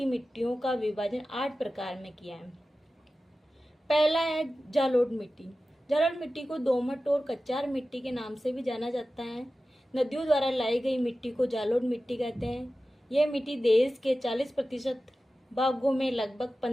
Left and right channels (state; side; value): normal; both; correlation 0.95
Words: मिट्टियों का विभाजन 8 प्रकार में किया है। पहला है जालोढ़ मिट्टी। जालोढ़ मिट्टी को दोमट और कच्चार मिट्टी के नाम से भी जाना जाता है। नदियों द्वारा लाई गई मिट्टी को जालोढ़ मिट्टी कहते हैं। यह मिट्टी देश के 40% भागों में लगभग